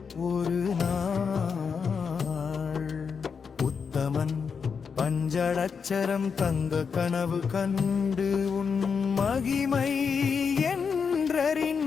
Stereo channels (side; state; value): right; quieter; 6.0 dB